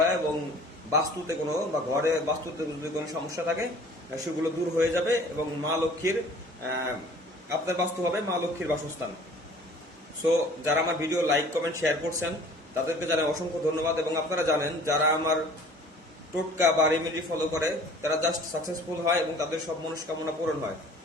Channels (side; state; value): both; normal; correlation 0.49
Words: এবং বাস্তুতে কোনো বা ঘরে বাস্তুতে যদি কোনো সমস্যা থাকে সেগুলো দূর হয়ে যাবে এবং মা লক্ষ্মীর আপনার বাস্তু হবে মা লক্ষ্মীর বাসস্থান। সো যারা আমার ভিডিও লাইক কমেন্ট শেয়ার করছেন তাদেরকে জানাই অসংখ্য ধন্যবাদ। এবং আপনারা জানেন যারা আমার টোটকা বা রেমেডি ফলো করে তারা জাস্ট সাকসেসফুল হয় এবং তাদের সব মনস্কামনা পূরণ হয়।